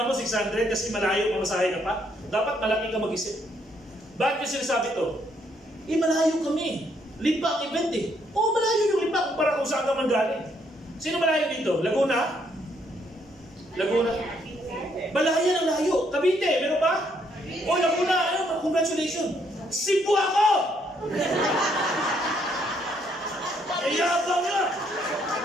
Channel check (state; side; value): normal; both; correlation 0.71